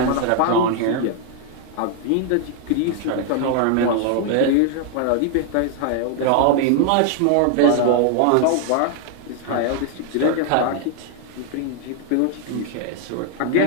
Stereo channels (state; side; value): different; both; correlation 0.00